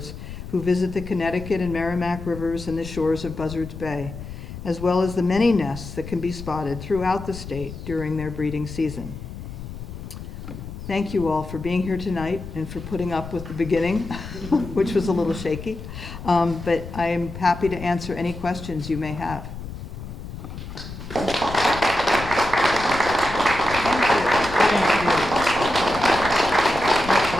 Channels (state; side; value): noise; left; rumble, 11 dB below the sound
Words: who visit the Connecticut and Merrimack rivers and the shores of Buzzards Bay, as well as the many nests that can be spotted throughout the state during their breeding season. Thank you all for being here tonight and for putting up with the beginning, which was a little shaky. But I am happy to answer any questions you may have. Thank